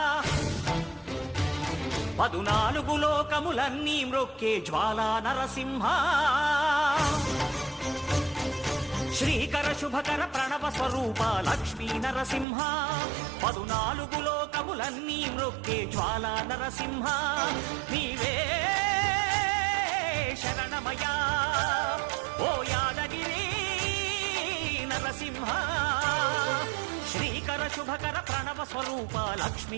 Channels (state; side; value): drops out; left; at 12.5 s